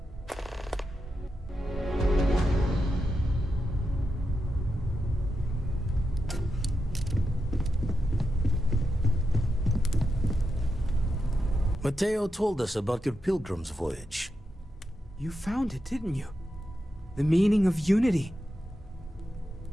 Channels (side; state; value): both; normal; correlation 0.87